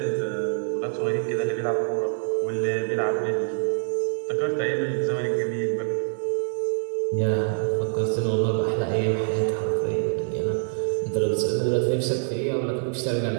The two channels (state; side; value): silent; left; 62 dB below the other